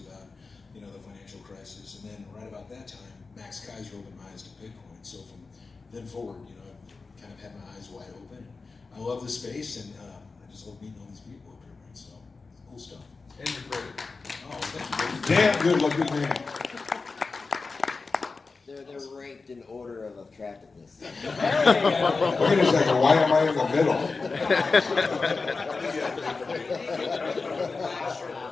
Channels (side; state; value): right; quieter; 4.2 dB